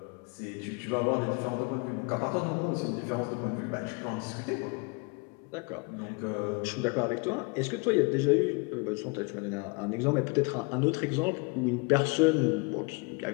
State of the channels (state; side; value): quieter; right; 30.6 dB